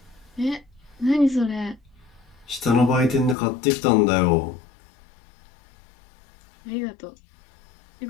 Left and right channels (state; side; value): drops out; right; at 3.4 s